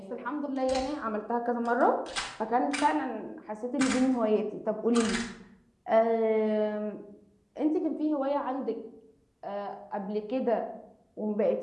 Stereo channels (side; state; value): both; identical; correlation 1.00